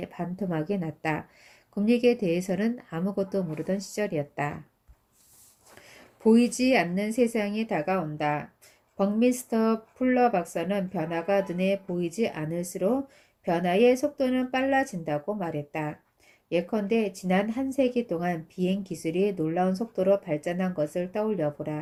반토막이 났다. 금리에 대해서는 아무것도 모르던 시절이었다. 보이지 않는 세상이 다가온다. 버미스터 풀러 박사는 변화가 눈에 보이지 않을수록 변화의 속도는 빨라진다고 말했다. 예컨대 지난 한 세기 동안 비행 기술이 놀라운 속도로 발전한 것을 떠올려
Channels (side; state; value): both; identical; correlation 1.00